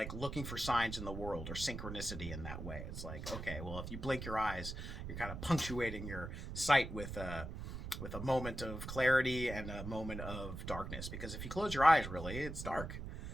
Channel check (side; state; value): right; noise; rumble, 7 dB below the sound